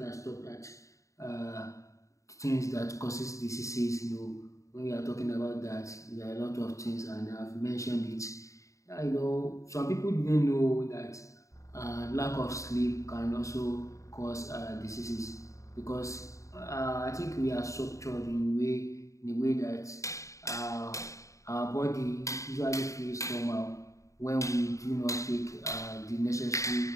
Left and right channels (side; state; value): right; late; 0.15 ms